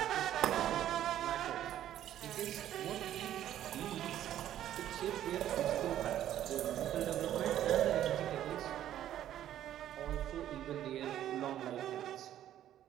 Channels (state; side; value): quieter; left; 11.7 dB